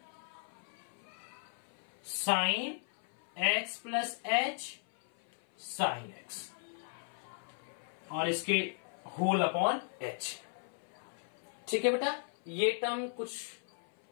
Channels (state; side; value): silent; right; 53 dB below the other